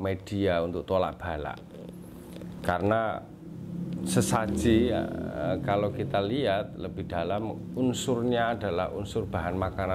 untuk tolak bala. Karena sesaji kalau kita lihat lebih dalam, unsurnya adalah unsur bahan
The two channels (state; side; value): identical; both; correlation 1.00